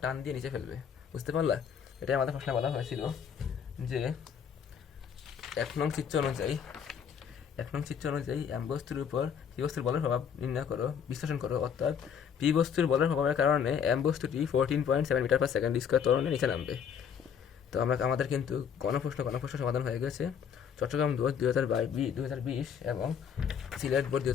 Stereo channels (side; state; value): right; quieter; 7.6 dB